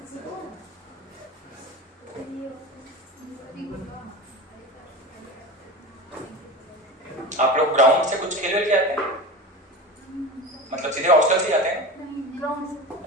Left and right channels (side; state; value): both; normal; correlation 0.29